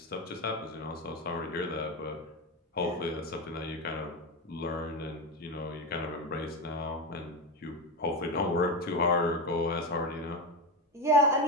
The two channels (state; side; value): normal; both; correlation 0.16